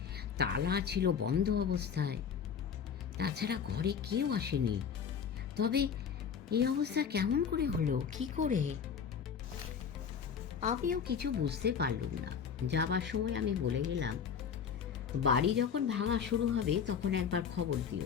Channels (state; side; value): quieter; right; 7.1 dB